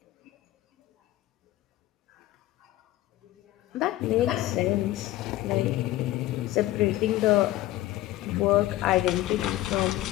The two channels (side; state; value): right; quieter; 15.8 dB